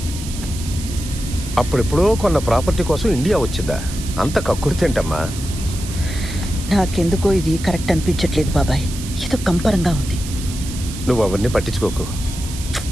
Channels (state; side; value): noise; right; hiss, 12 dB below the sound